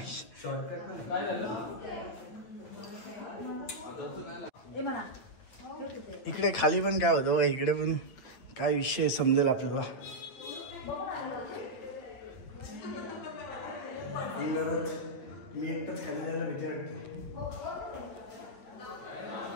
इकडे खाली पण काय होतं. इकडे पण काय विषय समजेल आपल्याला. मी एकटाच खाली जायला भीती वाटते.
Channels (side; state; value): right; late; 8.8 ms